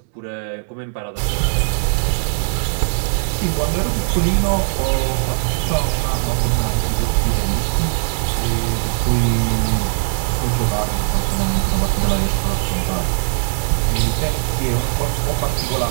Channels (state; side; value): silent; left; digital silence